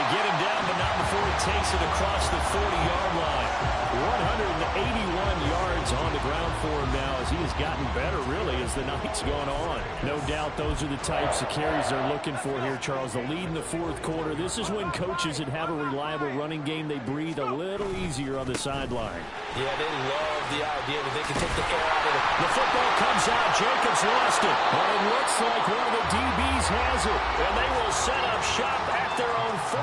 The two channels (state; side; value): identical; both; correlation 1.00